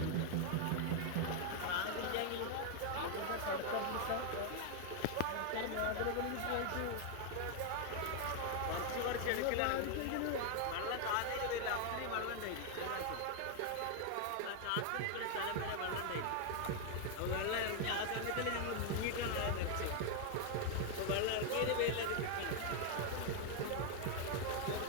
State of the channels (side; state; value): both; different; correlation 0.00